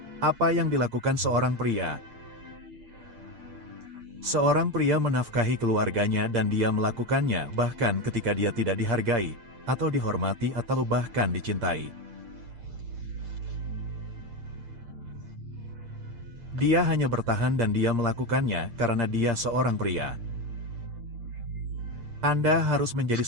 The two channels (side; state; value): left; late; 8.7 ms